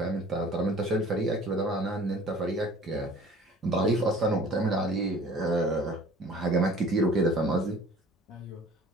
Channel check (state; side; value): normal; both; correlation 0.48